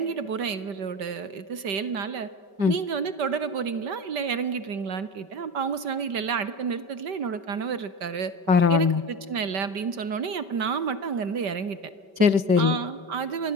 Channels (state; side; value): late; left; 5.2 ms